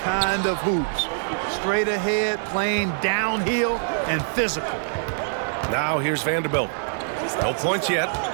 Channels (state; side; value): silent; left; digital silence